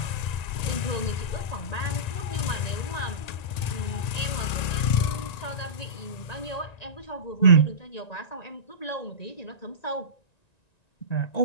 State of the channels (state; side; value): late; right; 1.9 ms